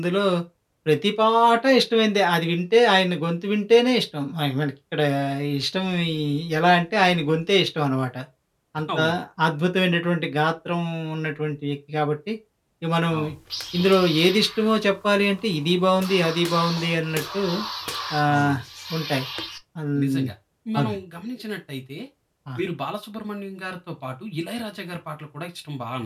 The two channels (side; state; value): both; identical; correlation 1.00